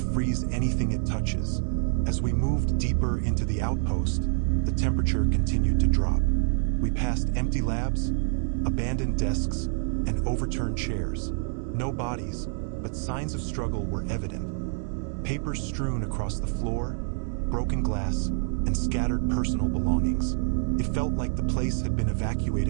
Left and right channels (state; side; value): silent; left; 60 dB below the other